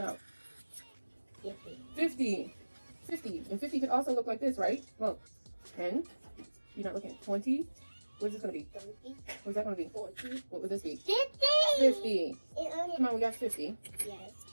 out. 50. 50. 50. And 50 could also look like this, right? Well, 10. You're not looking. 20. What is this going to be? 30. What's that going to be? 40. What would this be? 50. 50. It Come on, we got 50. Yes.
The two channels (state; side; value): inverted; both; correlation -1.00